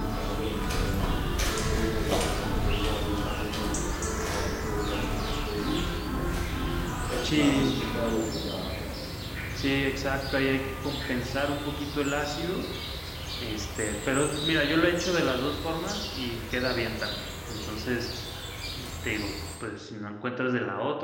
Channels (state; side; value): identical; both; correlation 1.00